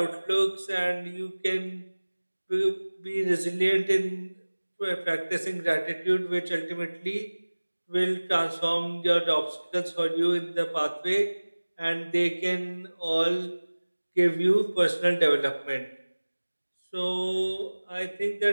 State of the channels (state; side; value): inverted; both; correlation -1.00